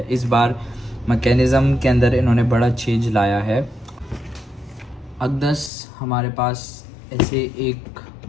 इस बार मैकेनिज़्म के अंदर इन्होंने बड़ा चेंज लाया है। अकदस हमारे पास ऐसे एक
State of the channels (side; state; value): right; drops out; at 5.7 s